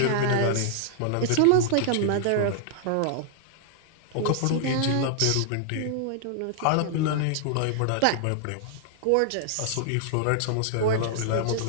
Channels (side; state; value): both; different; correlation -0.01